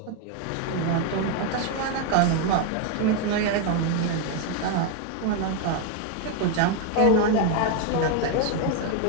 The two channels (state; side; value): different; both; correlation 0.01